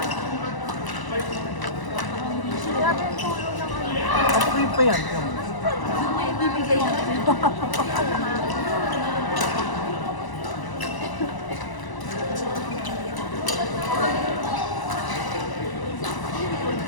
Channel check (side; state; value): right; late; 1.0 ms